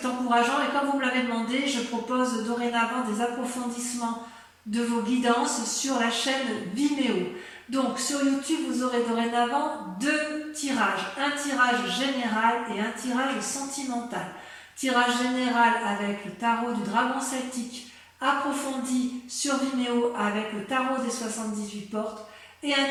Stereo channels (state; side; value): identical; both; correlation 1.00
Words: encourageant. Et comme vous me l'avez demandé, je propose dorénavant des approfondissements de vos guidances sur la chaîne Vimeo. Donc, sur YouTube, vous aurez dorénavant 2 tirages. Un tirage général et un tirage sentimental. Tirage général avec le tarot du dragon celtique approfondi sur Vimeo avec le tarot des 78 portes. Et un